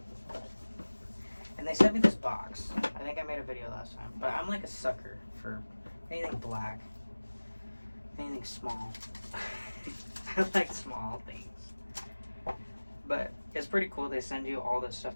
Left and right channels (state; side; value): inverted; both; correlation -1.00